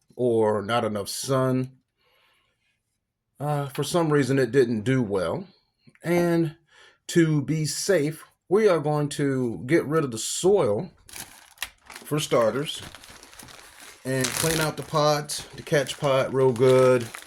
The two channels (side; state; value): both; identical; correlation 1.00